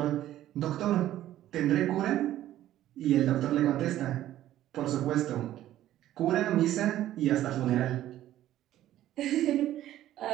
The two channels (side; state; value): left; quieter; 13.2 dB